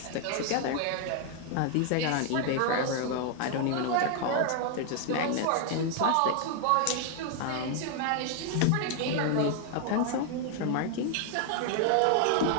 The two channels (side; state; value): both; different; correlation 0.00